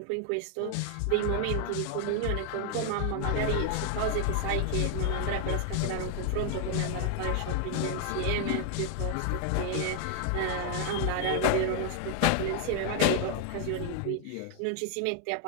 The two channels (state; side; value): different; both; correlation 0.00